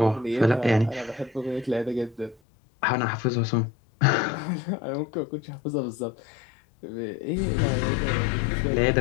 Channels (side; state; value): right; drops out; at 2.4 s